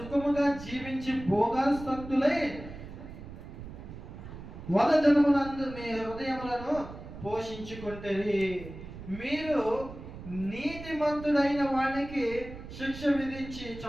జీవించి భోగాసక్తులై వదజనమునందు మీ హృదయములను పోషించుకుంటేరి. మీరు నీతిమంతుడైన వానికి శిక్ష విధించి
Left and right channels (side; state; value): right; noise; rumble, 13 dB below the sound